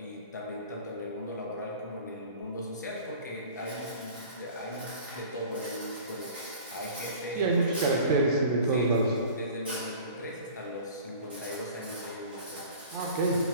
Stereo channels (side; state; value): both; inverted; correlation -0.43